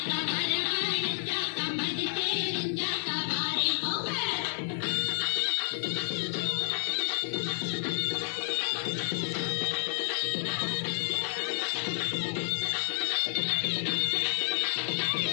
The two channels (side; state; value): right; silent; digital silence